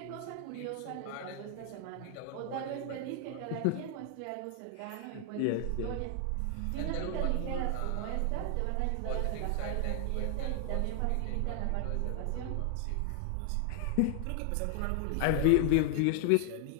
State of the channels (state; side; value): different; both; correlation 0.00